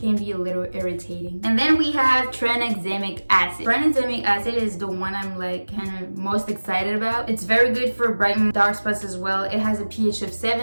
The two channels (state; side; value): inverted; both; correlation -1.00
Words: be a little irritating. And then we have tranexamic acid. Tranexamic acid is the one I'm like kind of most excited about. It's very good for brightening dark spots as well. It has a pH of